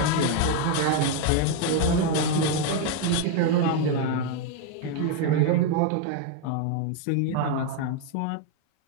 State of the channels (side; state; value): both; different; correlation 0.01